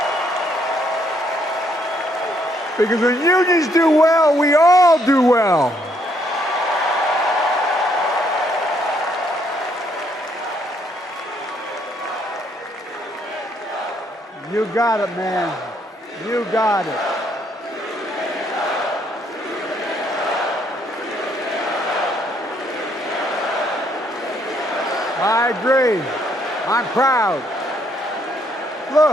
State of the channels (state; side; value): normal; both; correlation 0.70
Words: Because when unions do well, we all do well. You got it, man. You got it. I agree. I'm proud.